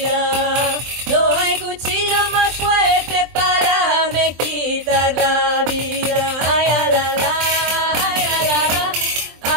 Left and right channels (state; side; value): late; left; 23 ms